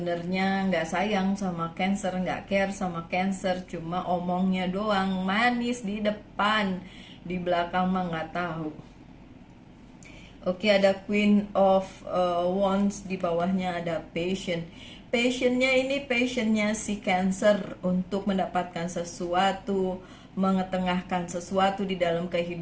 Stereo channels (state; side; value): identical; both; correlation 1.00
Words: nggak sayang sama Cancer, nggak care sama Cancer, cuma omongnya doang, manis di depan, di belakang mah nggak tahu. Oke, ada Queen of Wands, di bawahnya ada Passion. Passionnya ini passionnya si Cancer untuk mendapatkan sesuatu, mengetengahkan sesuatu di dalam